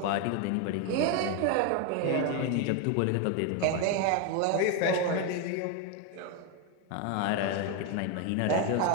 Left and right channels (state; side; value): different; both; correlation 0.02